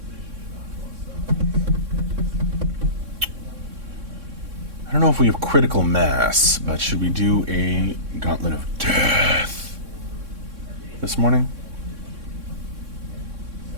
don't know if we have critical mass, but should we do a gauntlet of death this morning?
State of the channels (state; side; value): late; left; 3.6 ms